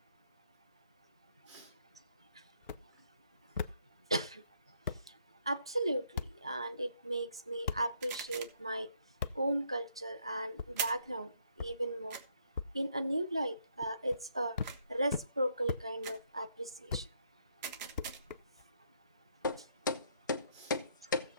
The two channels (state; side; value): inverted; both; correlation -0.71